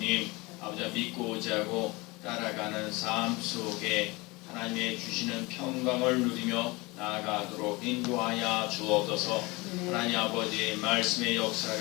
아버지 믿고 의지하고 따라가는 삶 속에 하나님의 주시는 평강을 누리며 나아가도록 인도하여 주옵소서. 하나님 아버지, 말씀의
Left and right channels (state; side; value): quieter; right; 24.2 dB